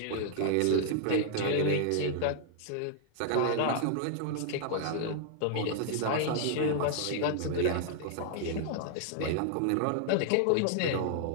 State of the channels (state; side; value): different; both; correlation -0.01